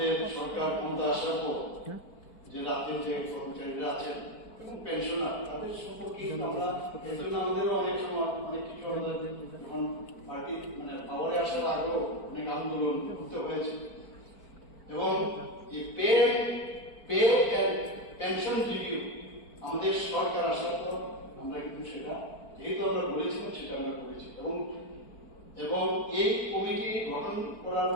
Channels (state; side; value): late; right; 4.5 ms